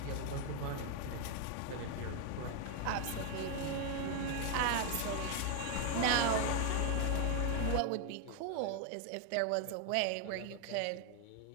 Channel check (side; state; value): both; different; correlation 0.01